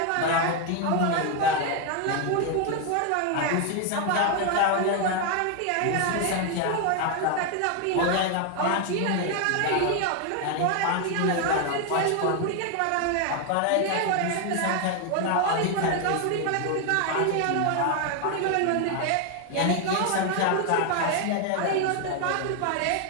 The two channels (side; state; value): both; different; correlation 0.01